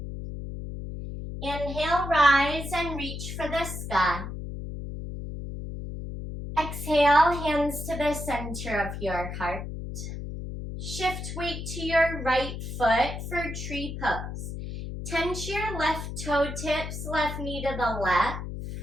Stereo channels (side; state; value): left; noise; hum, 7 dB below the sound